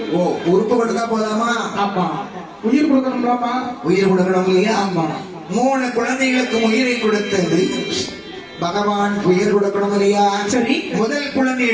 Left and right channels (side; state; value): both; identical; correlation 1.00